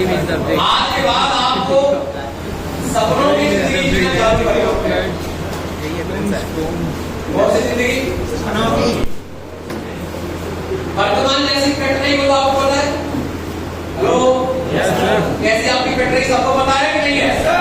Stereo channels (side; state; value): both; identical; correlation 1.00